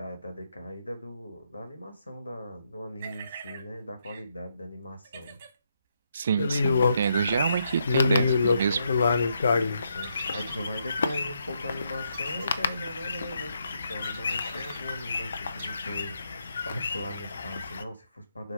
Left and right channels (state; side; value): inverted; both; correlation -0.78